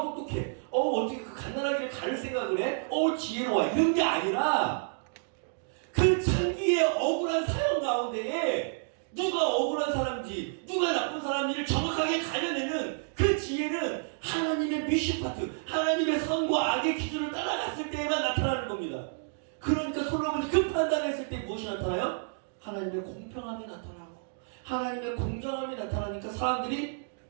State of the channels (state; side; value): silent; left; digital silence